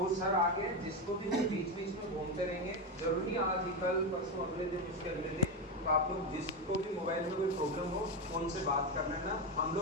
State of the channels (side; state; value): both; normal; correlation 0.13